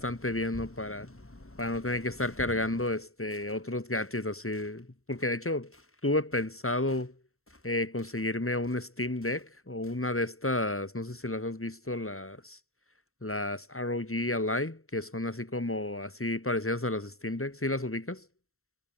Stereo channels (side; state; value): right; late; 0.63 ms